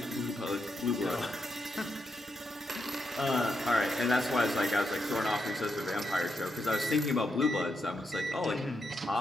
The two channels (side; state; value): both; normal; correlation 0.83